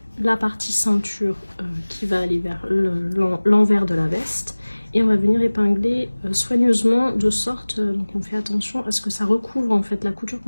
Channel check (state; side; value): inverted; both; correlation -1.00